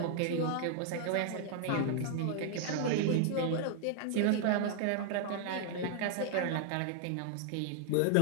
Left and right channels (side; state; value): both; different; correlation 0.00